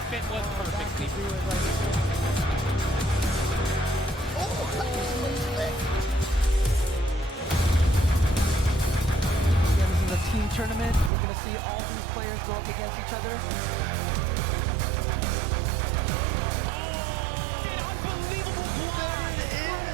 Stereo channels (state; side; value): drops out; left; at 11.1 s